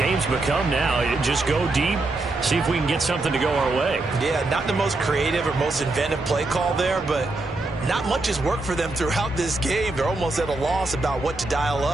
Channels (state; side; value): quieter; left; 3.0 dB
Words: become now. Just go deep, see if we can get something to go our way. Yeah, not the most creative or most inventive play call there, but not much has worked for them throughout this game. They're almost at a loss about what to dial